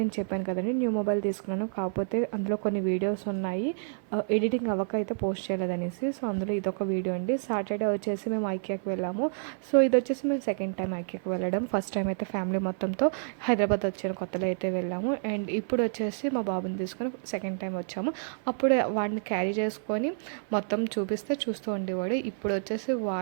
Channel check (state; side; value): silent; left; 59 dB below the other